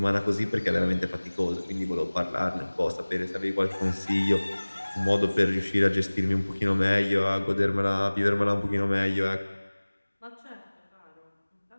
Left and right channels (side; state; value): both; inverted; correlation -1.00